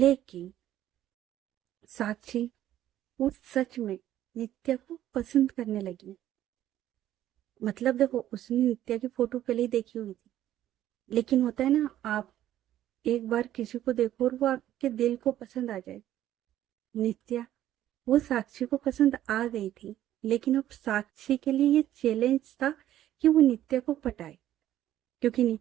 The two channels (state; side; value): quieter; left; 12.6 dB